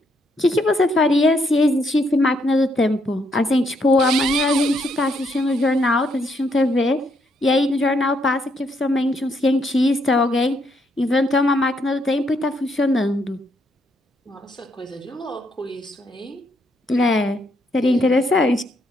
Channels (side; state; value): both; normal; correlation 0.74